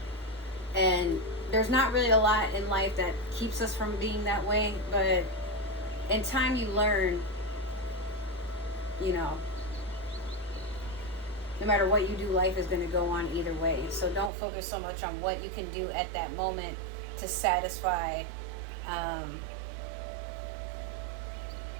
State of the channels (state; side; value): drops out; left; at 14.3 s